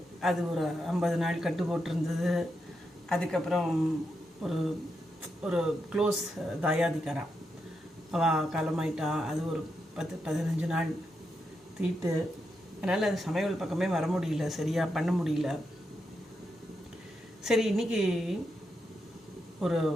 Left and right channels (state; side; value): normal; both; correlation 0.84